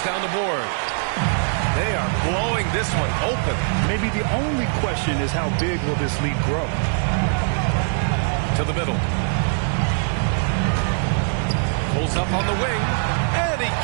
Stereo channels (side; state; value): left; silent; digital silence